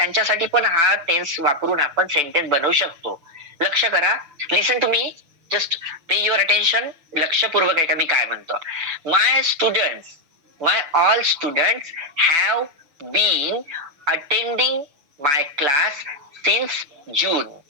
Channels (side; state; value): left; late; 6.0 ms